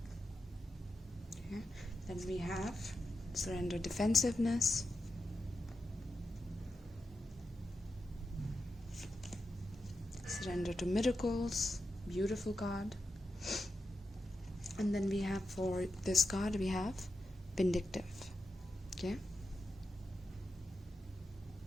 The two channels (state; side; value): normal; both; correlation 0.88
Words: okay, then we have surrender, defensiveness, surrender to miracles, beautiful card. And then we have, for this card, we have vindictive, okay.